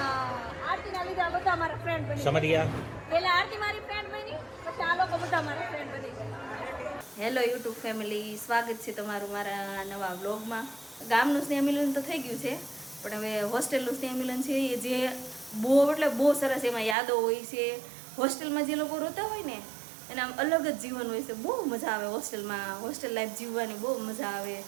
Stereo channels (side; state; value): left; drops out; at 16.9 s